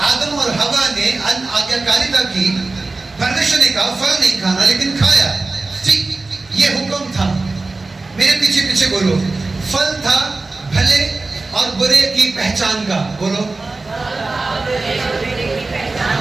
आदम और हवा ने आज्ञाकारिता की, परमेश्वर ने कहा फल नहीं खाना, लेकिन खाया। ठीक, ये हुक्म था। मेरे पीछे पीछे बोलो, फल था भले और बुरे की पहचान का। बोलो,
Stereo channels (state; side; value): quieter; left; 3.5 dB